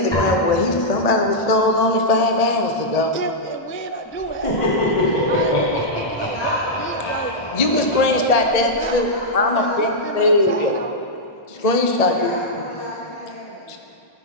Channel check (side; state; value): right; late; 1.7 ms